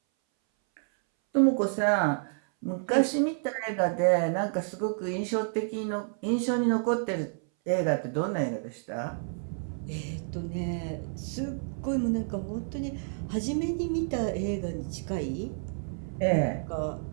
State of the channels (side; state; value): left; silent; 58 dB below the other